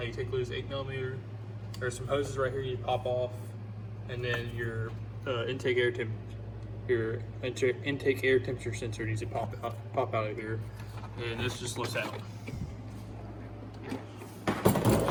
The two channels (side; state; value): both; identical; correlation 1.00